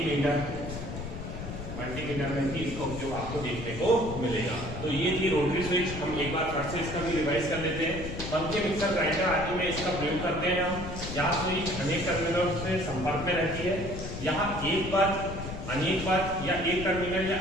मल्टीमीटर में भी इसका उपयोग आपको देखने को मिलेगा। तो ये थी रोटरी स्विच। हम एक बार फिर से इसका भी रिवाइज कर लेते हैं। पंखे, मिक्सर, ग्राइंडर आदि में इसका प्रयोग करते हैं हम। यहाँ स्विच अनेक टर्मिनलों से संपर्क में रहती है। यहाँ एक पद, अनेक पद या एक टर्मिनल या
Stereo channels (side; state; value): left; noise; rumble, 8 dB below the sound